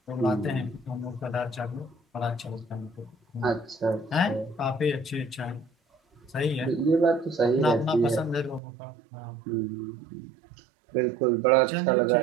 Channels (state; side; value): drops out; left; at 8.6 s